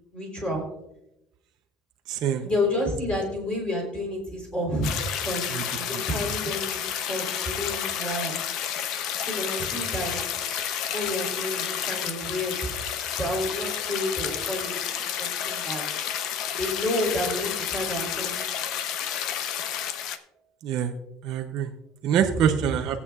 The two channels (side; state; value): both; normal; correlation 0.42